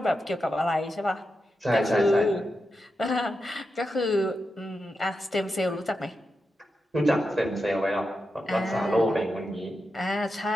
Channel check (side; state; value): both; normal; correlation 0.88